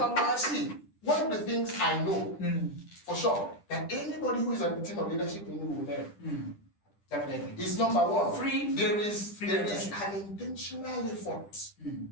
See, one of the things I know for sure, that anybody who is on the team of leadership will learn. Definitely. It's number one. There is free an intentional effort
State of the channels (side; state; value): right; late; 10 ms